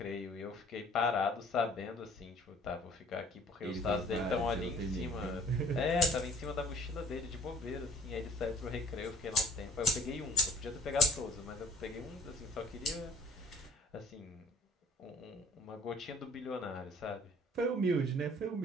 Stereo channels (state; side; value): normal; both; correlation 0.52